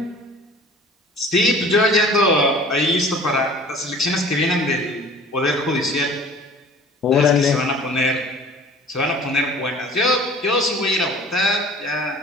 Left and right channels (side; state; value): both; normal; correlation 0.47